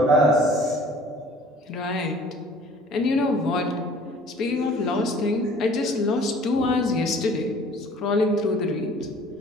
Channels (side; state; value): both; normal; correlation 0.51